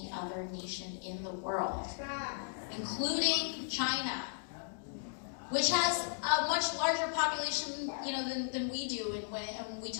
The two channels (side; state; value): right; silent; digital silence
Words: other nation in the world, including China, which has a much larger population, than we do. And when we